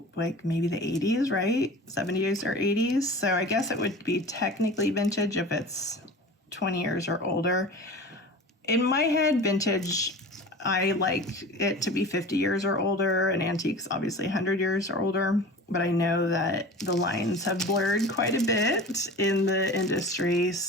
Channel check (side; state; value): both; normal; correlation 0.36